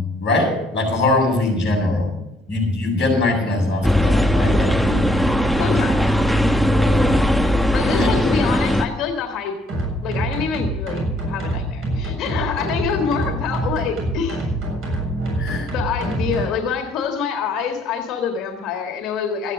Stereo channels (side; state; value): both; normal; correlation 0.67